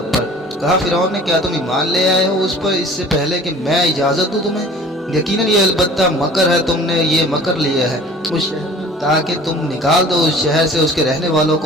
پر۔ کہا فرعون نے کیا تم ایمان لے آئے ہو اس پر اس سے پہلے کہ میں اجازت دوں تمہیں؟ یقیناً یہ البتہ مکر ہے، تم نے یہ مکر لیا ہے۔ اس شہر میں تاکہ تم نکال دو اس شہر سے اس کے رہنے والوں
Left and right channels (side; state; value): both; normal; correlation 0.46